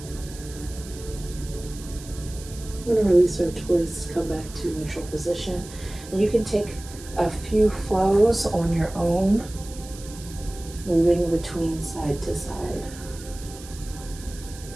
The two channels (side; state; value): right; noise; hiss, 17 dB below the sound